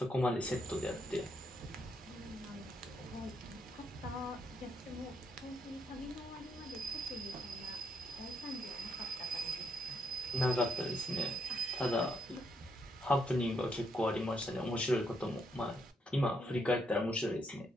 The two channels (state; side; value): normal; both; correlation 0.76